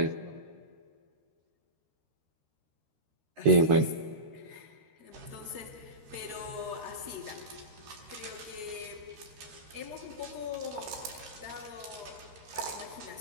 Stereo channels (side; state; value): left; late; 13 ms